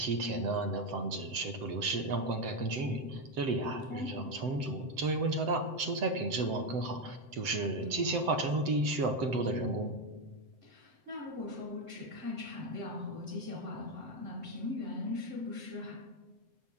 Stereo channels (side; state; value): left; late; 7.8 ms